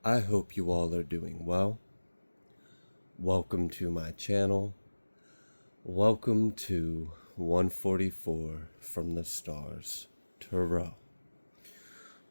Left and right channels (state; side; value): inverted; both; correlation -1.00